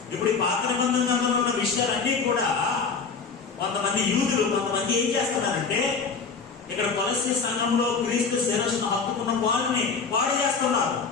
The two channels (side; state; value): right; quieter; 5.2 dB